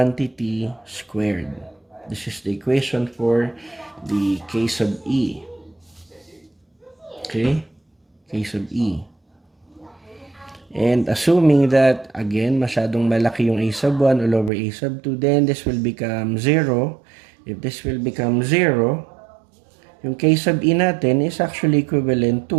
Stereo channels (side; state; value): left; drops out; at 14.5 s